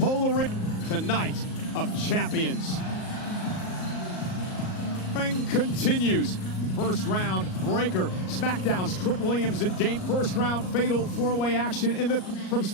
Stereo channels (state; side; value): late; right; 38 ms